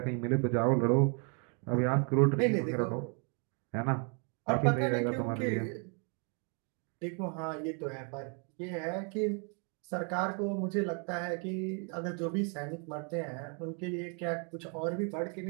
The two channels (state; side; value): quieter; left; 38.3 dB